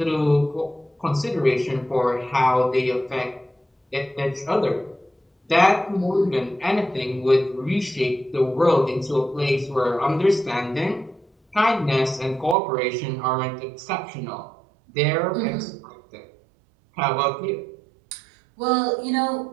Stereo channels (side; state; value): left; drops out; at 12.6 s